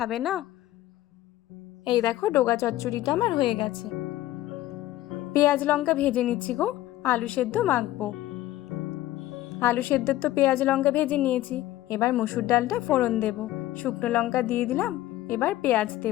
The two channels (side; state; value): right; quieter; 15.2 dB